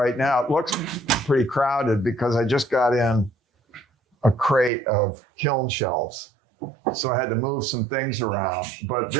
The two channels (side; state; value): left; drops out; at 4.7 s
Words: now. It looks pretty crowded because I just got in a crate of kiln shelves. So I had to move some things around. But